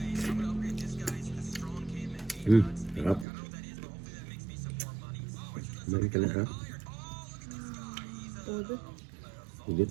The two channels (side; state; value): left; drops out; at 3.2 s